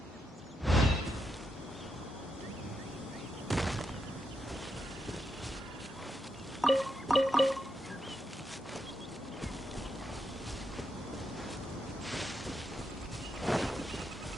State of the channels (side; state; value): both; normal; correlation 0.83